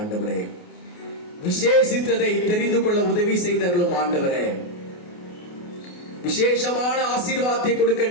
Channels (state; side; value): late; right; 28 ms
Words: விசேஷித்ததை தெரிந்து கொள்ள உதவி செய்தர்களும் ஆண்டவரே. விசேஷமான ஆசீர்வாதத்தை கொடுக்க